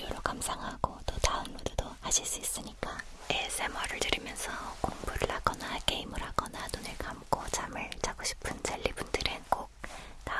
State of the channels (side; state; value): both; identical; correlation 1.00